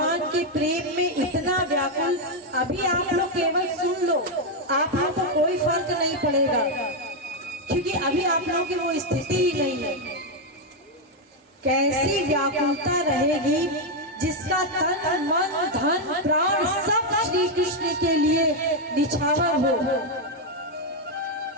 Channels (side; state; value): both; normal; correlation 0.02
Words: के प्रेम में इतना व्याकुल। अभी आप लोग केवल सुन लो, आप लोग को कोई फर्क नहीं पड़ेगा, क्योंकि अभी आप लोगों की वो स्थिति ही नहीं है। कैसी व्याकुलता रहेगी जिसका तन मन धन प्राण सब श्री कृष्ण के लिए निछावर हो,